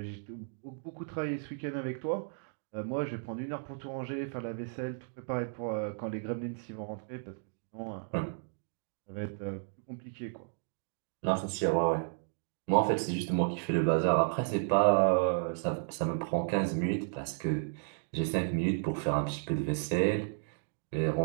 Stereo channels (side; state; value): left; silent; digital silence